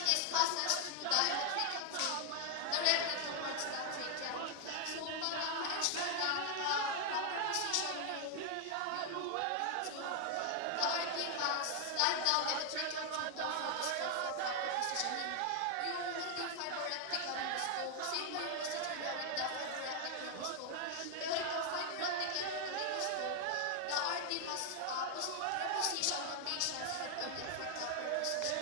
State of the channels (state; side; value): different; both; correlation 0.00